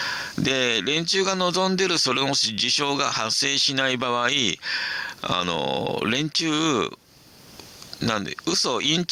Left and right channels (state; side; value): identical; both; correlation 1.00